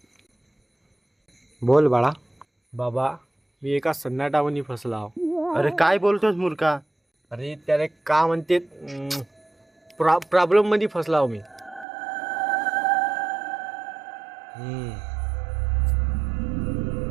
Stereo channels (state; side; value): drops out; left; at 11.9 s